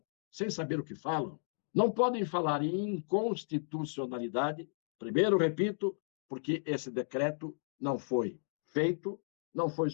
sem saber o que falam, não podem falar em inconstitucionalidade, primeiro, repito, porque esse decreto não foi feito, não foi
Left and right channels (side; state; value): right; silent; digital silence